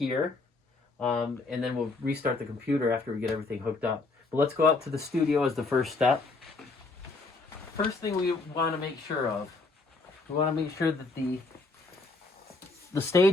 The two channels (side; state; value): right; quieter; 3.5 dB